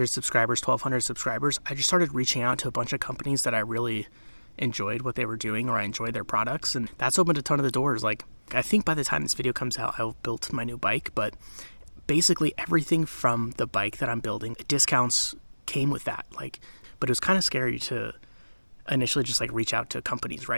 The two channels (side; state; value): both; inverted; correlation -1.00